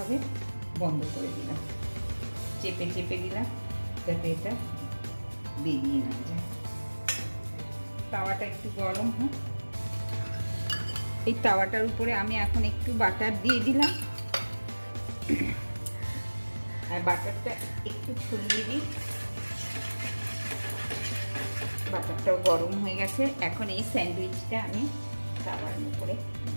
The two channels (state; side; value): inverted; both; correlation -1.00